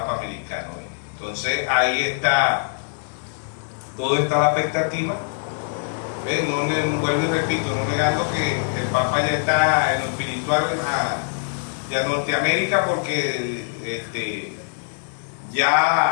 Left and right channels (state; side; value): silent; right; digital silence